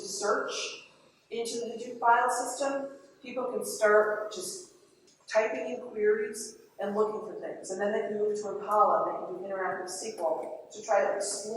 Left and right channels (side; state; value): both; identical; correlation 1.00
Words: into the Hadoop file system, people can start just typing in queries and looking for things. And then they can move to Impala, they can do interactive SQL to try to